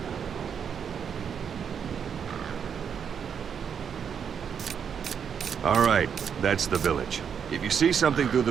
All right, that's the village. If you see something through the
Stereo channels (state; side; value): quieter; left; 7.4 dB